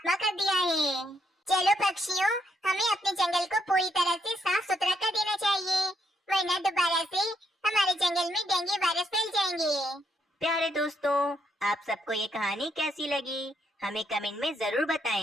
कर दिया है। चलो पक्षियों, हमें अपने जंगल को पूरी तरह से साफ सुथरा कर देना चाहिए, वरना दोबारा से हमारे जंगल में डेंगू वायरस फैल जाएंगे। प्यारे दोस्तों, आप सबको ये कहानी कैसी लगी हमें कमेंट में जरूर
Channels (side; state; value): both; normal; correlation 0.75